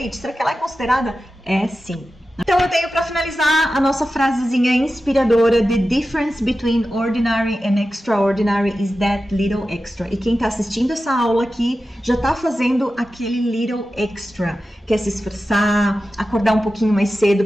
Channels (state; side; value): normal; both; correlation 0.93